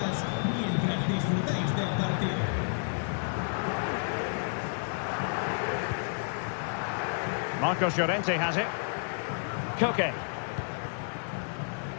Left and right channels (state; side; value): silent; right; digital silence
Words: mientras disfrutáis del partido. Marcos Llorente has it. Koke.